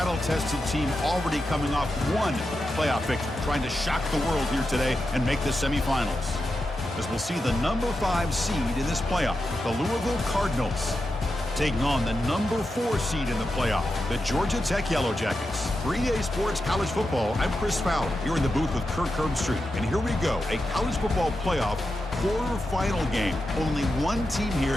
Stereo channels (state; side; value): normal; both; correlation 0.89